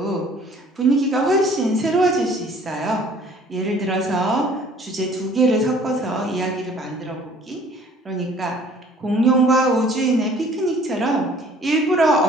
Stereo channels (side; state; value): both; normal; correlation 0.54